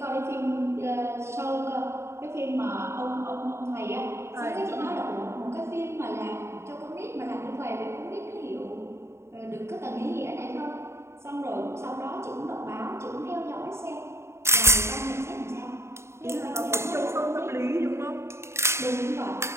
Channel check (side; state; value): left; late; 0.13 ms